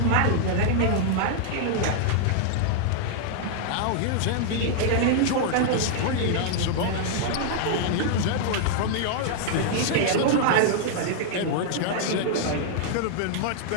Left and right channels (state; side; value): different; both; correlation -0.01